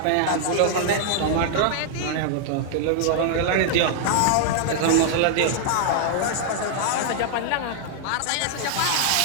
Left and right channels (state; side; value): different; both; correlation -0.01